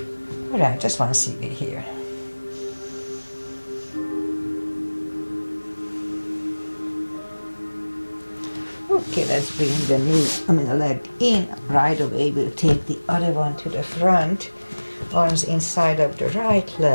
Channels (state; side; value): inverted; both; correlation -1.00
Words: All right, just 1 CB here. Okay, let's bring the leg in. Right away, we'll take the other one to the front. Arms inside of the right